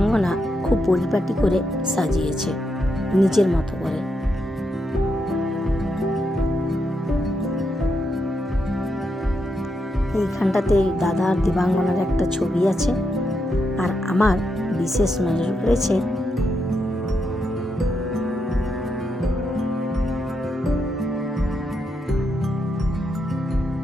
খুব পরিপাটি করে সাজিয়েছে নিজের মতো করে। এইখানটাতে দাদা আর দেবাঙ্গনার একটা ছবি আছে, আর আমার বিশেষ নজর পড়েছে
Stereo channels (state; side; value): normal; both; correlation 0.82